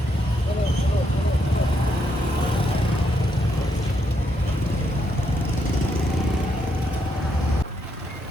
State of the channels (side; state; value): both; normal; correlation 0.78